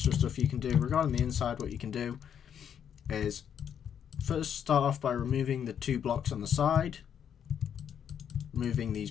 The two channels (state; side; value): quieter; right; 8.6 dB